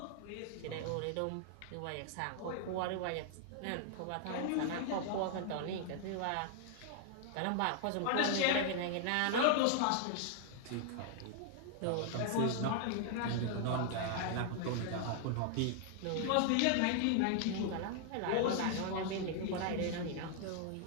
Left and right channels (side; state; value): both; different; correlation 0.00